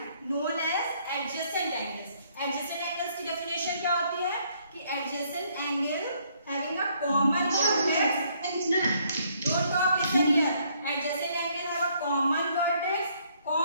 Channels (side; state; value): both; inverted; correlation -0.67